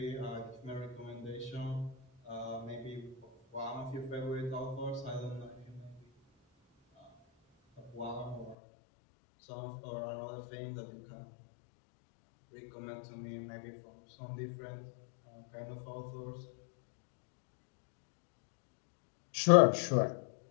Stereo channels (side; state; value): right; drops out; at 8.6 s